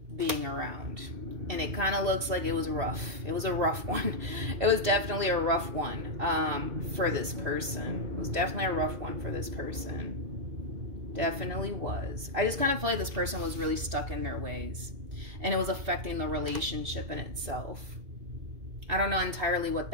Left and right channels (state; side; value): late; left; 2.7 ms